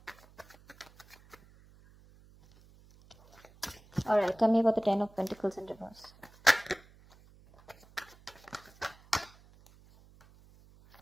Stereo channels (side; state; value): right; noise; hum, 26 dB below the sound